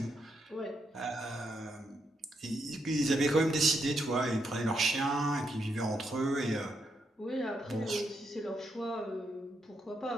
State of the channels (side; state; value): both; normal; correlation 0.80